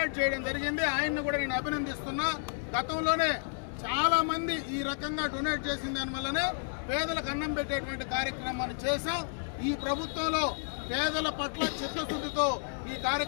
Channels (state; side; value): silent; right; 57 dB below the other